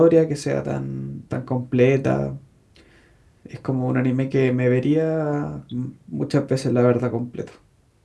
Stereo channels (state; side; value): identical; both; correlation 1.00